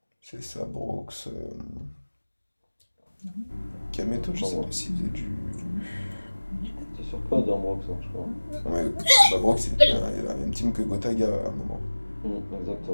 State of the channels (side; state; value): both; inverted; correlation -1.00